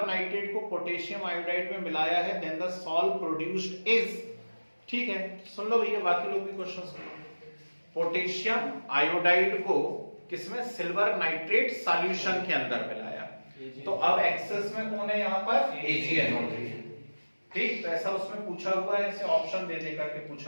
नाइट्रेट को पोटेशियम आयोडाइड में मिलाया है, then the salt produced is, ठीक है। सुन लो भैया, बाकी लोग भी क्वेश्चन सुन लो। पोटेशियम आयोडाइड को किसमें, सिल्वर नाइट्रेट सॉल्यूशन के अंदर मिलाया, तो अब एक्सेस में कौन है यहाँ पर, AgNO3, ठीक। तो ऐसा उसमें पूछा हुआ है, ऐसे ऑप्शन दे दे करके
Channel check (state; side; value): inverted; both; correlation -1.00